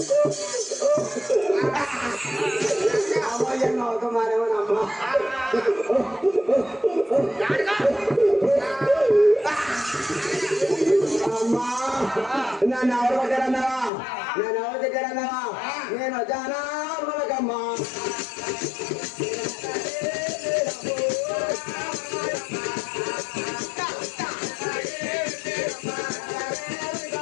నన్ను ఎవరు కొట్టారన్నావా నేను ఎవరు తిట్టారన్నావా నేను వచ్చానా మనకమ్మా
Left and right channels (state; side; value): drops out; right; at 13.9 s